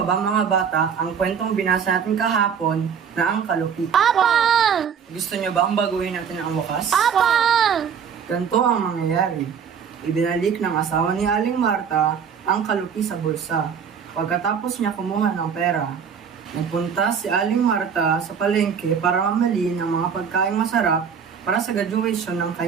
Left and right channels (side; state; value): left; quieter; 7.1 dB